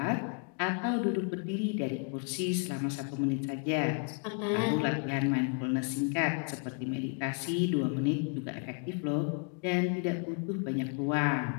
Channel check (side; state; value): right; quieter; 38.2 dB